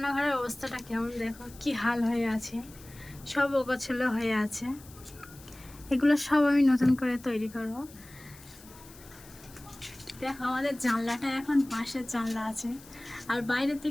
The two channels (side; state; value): left; noise; hiss, 21 dB below the sound